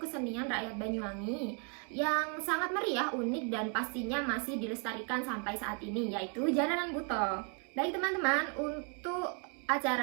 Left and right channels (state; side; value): quieter; left; 38.4 dB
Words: rakyat Banyuwangi yang sangat meriah, unik, dan pastinya masih dilestarikan sampai saat ini, yaitu Jaranan Buto. Baik teman-teman, untuk